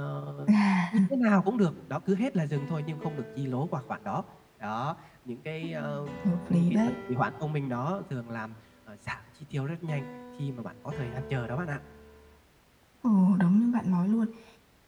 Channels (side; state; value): both; identical; correlation 1.00